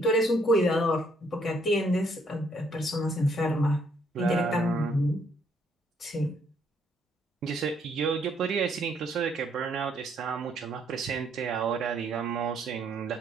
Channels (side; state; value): both; normal; correlation 0.69